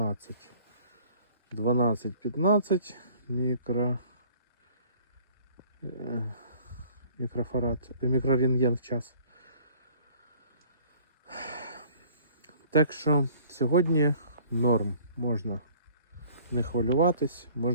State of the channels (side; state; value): both; inverted; correlation -0.53